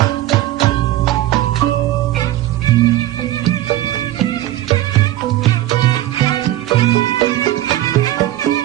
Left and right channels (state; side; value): quieter; left; 14.6 dB